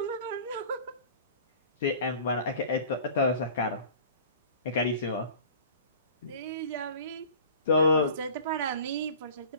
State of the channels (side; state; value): both; inverted; correlation -0.44